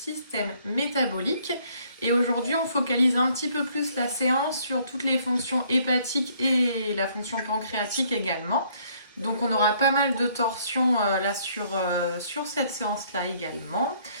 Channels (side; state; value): both; inverted; correlation -0.64